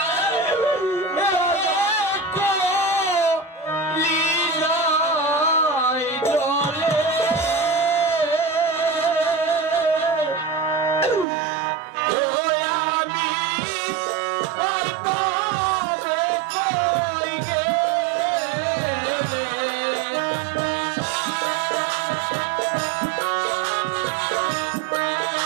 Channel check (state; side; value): drops out; left; at 11.2 s